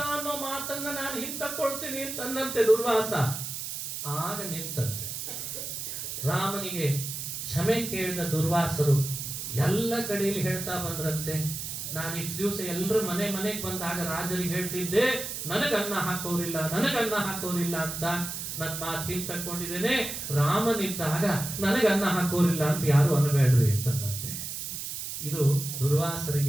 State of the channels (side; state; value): right; noise; hiss, 6 dB below the sound